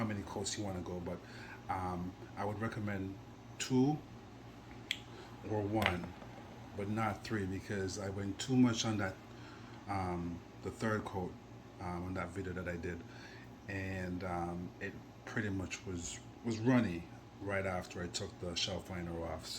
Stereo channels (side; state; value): both; identical; correlation 1.00